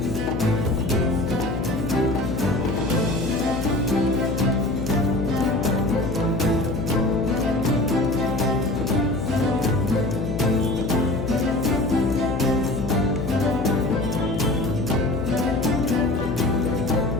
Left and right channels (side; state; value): left; noise; hum, 5 dB below the sound